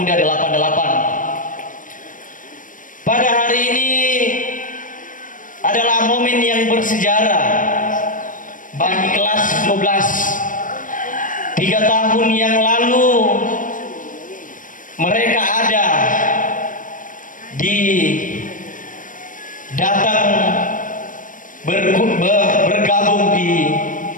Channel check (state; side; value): late; right; 0.38 ms